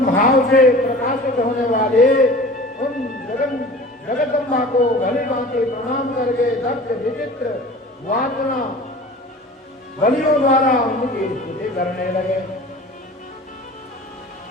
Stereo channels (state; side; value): normal; both; correlation 0.41